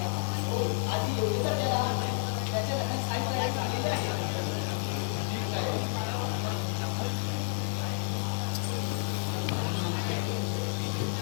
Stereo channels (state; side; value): silent; right; digital silence